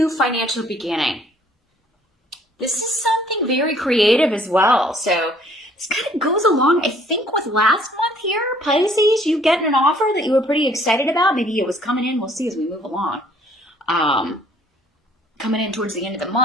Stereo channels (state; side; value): normal; both; correlation 0.60